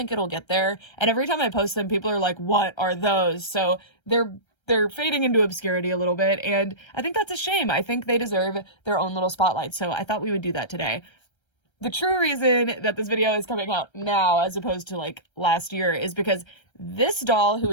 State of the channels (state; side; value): late; right; 1.3 ms